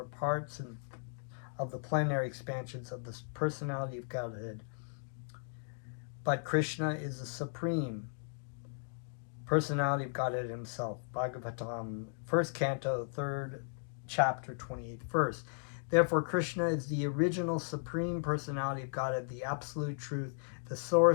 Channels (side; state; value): right; silent; digital silence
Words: parts of the plenary expansions of the personality of Godhead. But Krishna is the supreme personality of Godhead himself. Bhagavatam, 1st canto, 3rd chapter, 28th verse. Therefore, Krishna is the original supreme personality of Godhead, the absolute truth, the